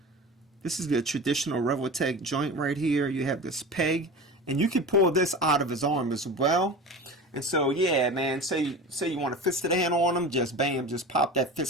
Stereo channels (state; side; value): normal; both; correlation 0.32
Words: this is the traditional Revoltech joint right here. You have this peg, and you can pull this out of his arm as well. And so, yeah, man, say you want a fisted hand on him, just bam, just pop that